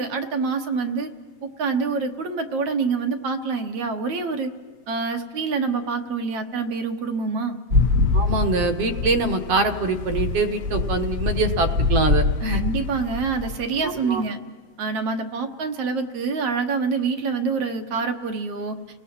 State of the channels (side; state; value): left; late; 7.6 ms